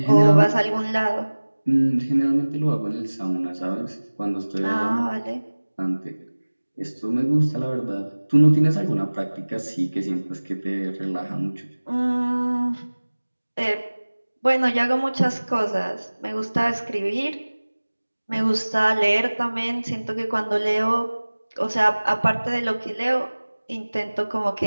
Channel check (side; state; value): both; inverted; correlation -1.00